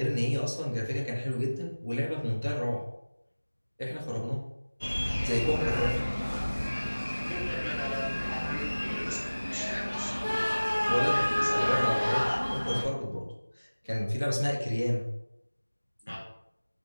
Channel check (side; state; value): both; inverted; correlation -1.00